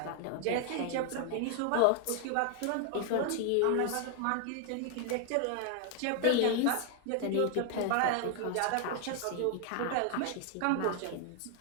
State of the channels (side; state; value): both; different; correlation 0.00